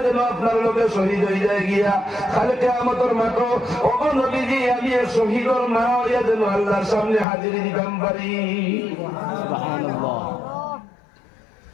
যেন আপনার লোকে শহীদ হয়ে যায় গিয়া খালে কিয়ামতের মাঠে ও গো নবীজি আমি এক শহীদের মা হইয়া যেন আল্লাহর সামনে হাজিরি দিতাম পারি সুবহানাল্লাহ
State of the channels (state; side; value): drops out; right; at 7.2 s